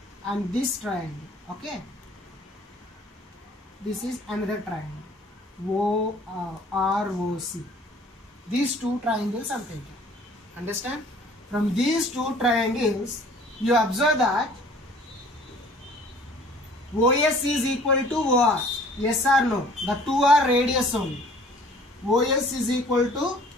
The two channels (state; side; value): normal; both; correlation 0.52